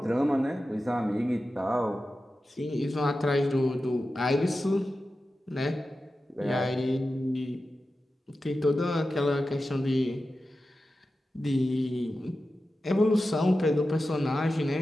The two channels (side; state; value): both; normal; correlation 0.93